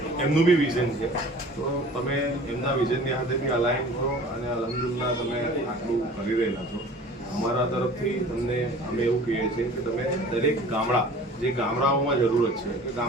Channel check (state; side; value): normal; both; correlation 0.45